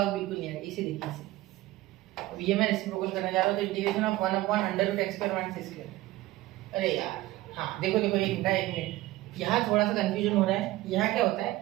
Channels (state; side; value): quieter; left; 17.4 dB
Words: बिल्कुल नहीं आएगा, इसे देखिए इसे। अब ये मैं रेसिप्रोकल करने जा रहा हूँ, तो इंटीग्रेशन ऑफ 1/√x² - x², अरे यार हाँ देखो देखो, एक मिनट, यहाँ थोड़ा सा कंफ्यूजन हो रहा है। यहाँ क्या होता